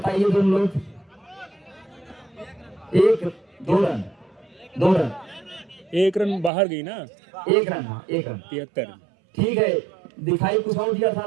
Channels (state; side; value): drops out; left; at 6.5 s